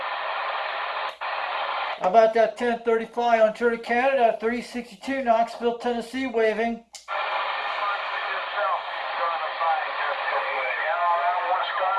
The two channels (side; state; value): both; identical; correlation 1.00